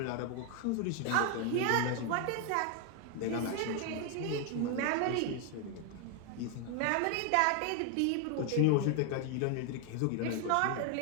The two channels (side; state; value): both; different; correlation 0.01